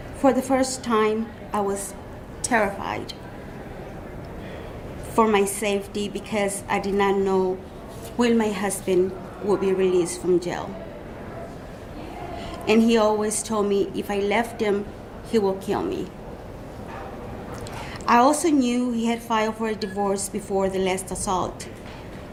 for the first time, I was terrified for my safety because I did not know when my husband would be released from jail. And he always told me if I left him, he will kill me. I also knew he had filed for a divorce before the last assault,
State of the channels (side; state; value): both; identical; correlation 1.00